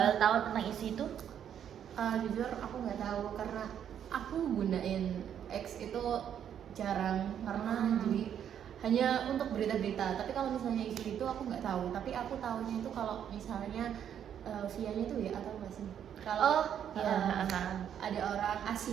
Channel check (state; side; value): quieter; left; 9.2 dB